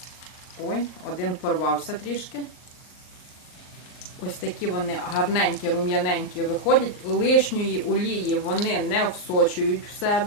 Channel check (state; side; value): late; right; 39 ms